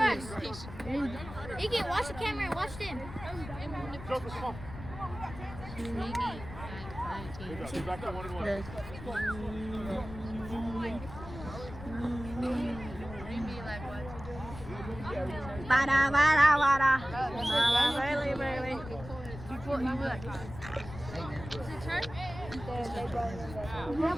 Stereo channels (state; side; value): noise; left; rumble, 12 dB below the sound